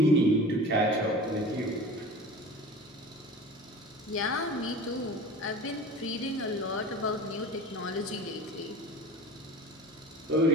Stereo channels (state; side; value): normal; both; correlation 0.37